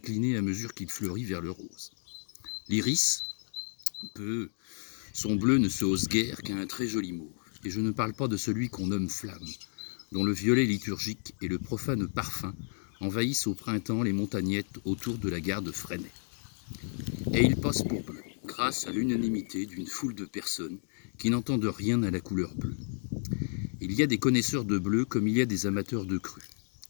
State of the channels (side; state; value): right; silent; digital silence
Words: à mesure qu'il fleurit vers le rose. L'iris, son bleu ne se hausse guère qu'à un très joli mauve. Et je ne parle pas de celui qu'on nomme flamme, dont le violet liturgique et le profane parfum envahissent au printemps les montagnettes autour de la gare de Fresnay. Et il passe pour bleu, grâce à l'unanimité d'une foule de personnes qui n'entendent rien à la couleur bleue. Il y a des connaisseurs de bleu comme il y a des amateurs de cru.